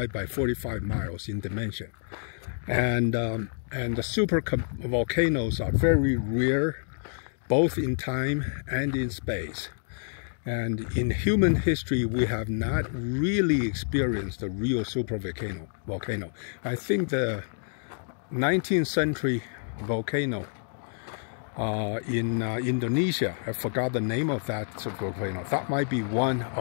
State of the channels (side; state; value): right; silent; digital silence